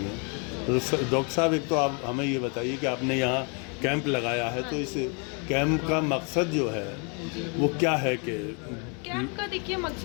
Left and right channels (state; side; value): quieter; right; 36.0 dB